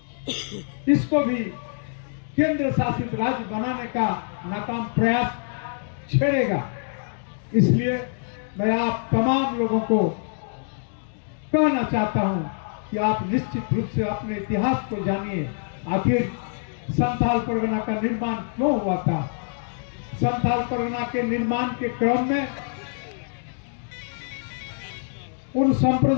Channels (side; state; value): right; silent; digital silence